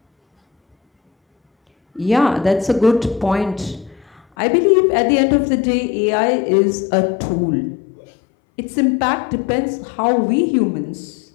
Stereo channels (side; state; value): right; drops out; at 4.2 s